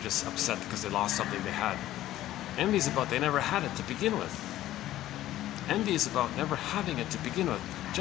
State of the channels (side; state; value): right; quieter; 14.1 dB